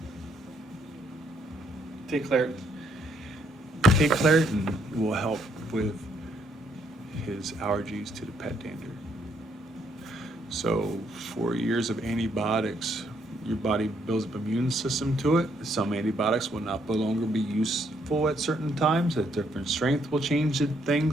Take Claritin. Take Claritin will help with his allergies to the pet dander. So 4 years of antibiotics, your body builds up an immune system to it. Some antibiotics will no longer be useful at certain times. At different strength will change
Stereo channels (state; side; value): normal; both; correlation 0.71